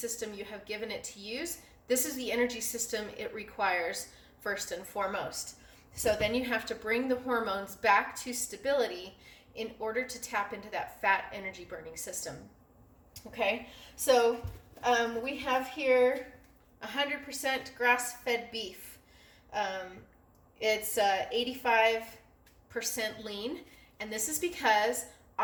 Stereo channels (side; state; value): both; identical; correlation 1.00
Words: you have given it to use, this is the energy system it requires first and foremost. So then you have to bring the hormones back to stability in order to tap into that fat energy burning system. Okay, so we have here 100% grass-fed beef. It's 85% lean, And this is because